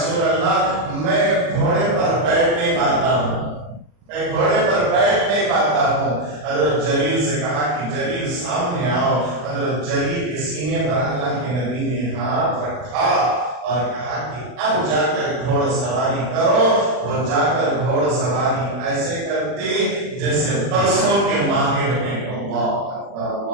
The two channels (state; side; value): late; left; 40 ms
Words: اللہ میں گھوڑے پر بیٹھ نہیں پاتا ہوں, میں گھوڑے پر بیٹھ نہیں پاتا ہوں. حضرت جلیل سے کہا کہ جلیل سامنے آؤ. حضرت جلیل کے سینے پر اللہ کے نبی نے ہاتھ رکھا اور کہا کہ اب جا کر گھوڑ سواری کرو. وہ جا کر گھوڑ سواری ایسے کرتے جیسے برسوں کے ماہر ہیں. اللہ اکبر